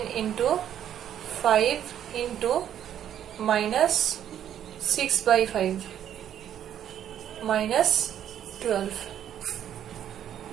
into 5 into minus 6 by 5 minus 12.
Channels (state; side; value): quieter; left; 10.2 dB